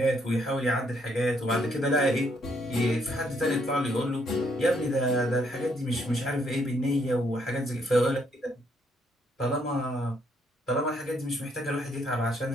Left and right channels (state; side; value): normal; both; correlation 0.72